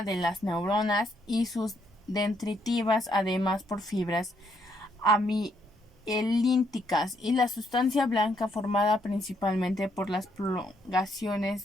de las neuronas y sus dendritivas, además por fibras amielínticas, y la sustancia blanca formada principalmente por las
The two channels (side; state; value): both; normal; correlation 0.73